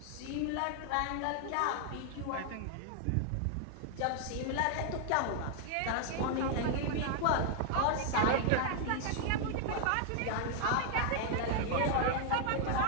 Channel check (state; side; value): different; both; correlation 0.00